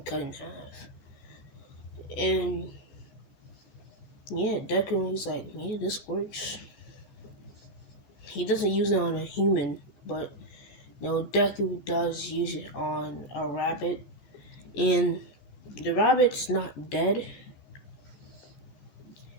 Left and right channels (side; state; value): right; late; 14 ms